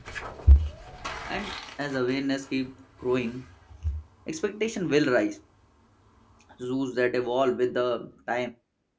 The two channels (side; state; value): both; identical; correlation 1.00